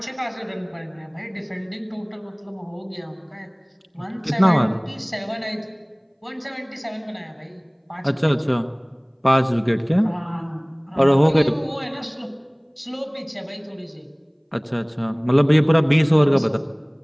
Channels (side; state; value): both; identical; correlation 1.00